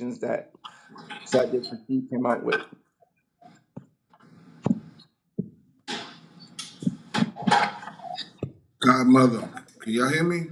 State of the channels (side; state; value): both; identical; correlation 1.00